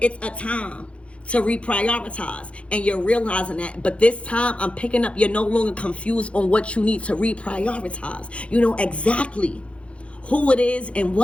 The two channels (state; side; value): late; right; 0.061 ms